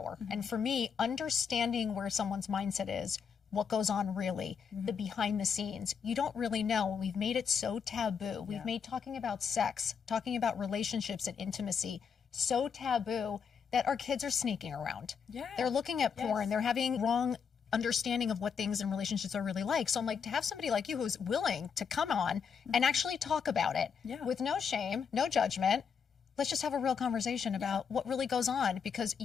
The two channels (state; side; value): quieter; right; 6.6 dB